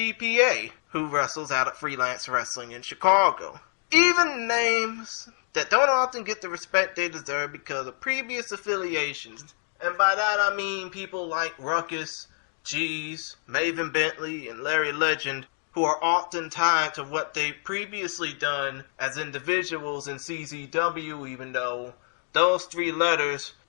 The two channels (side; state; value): right; silent; 57 dB below the other